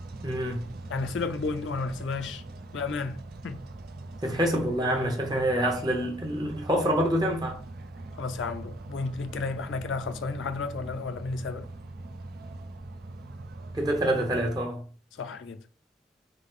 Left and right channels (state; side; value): normal; both; correlation 0.60